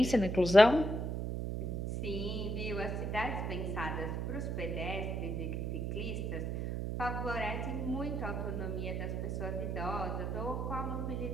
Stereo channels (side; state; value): right; noise; hum, 1 dB below the sound